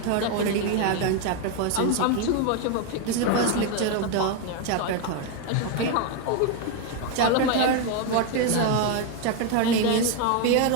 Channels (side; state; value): both; different; correlation 0.01